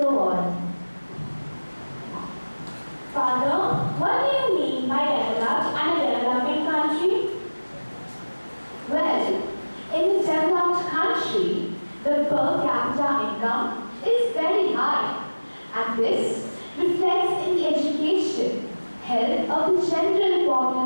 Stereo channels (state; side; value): inverted; both; correlation -1.00